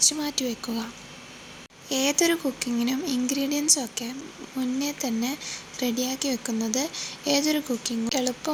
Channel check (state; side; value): identical; both; correlation 1.00